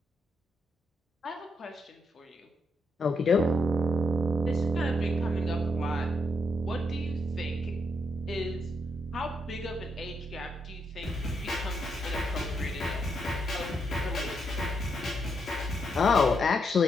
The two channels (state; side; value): normal; both; correlation 0.79